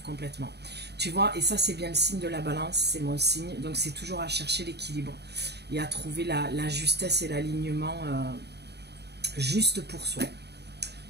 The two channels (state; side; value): late; left; 0.48 ms